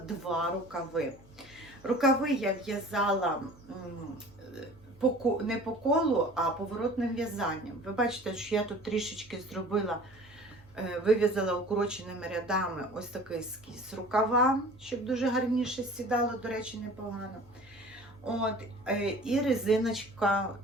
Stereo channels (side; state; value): both; normal; correlation 0.44